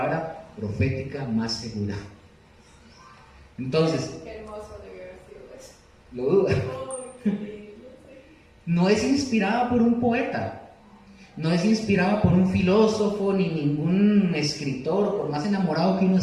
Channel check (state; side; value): identical; both; correlation 1.00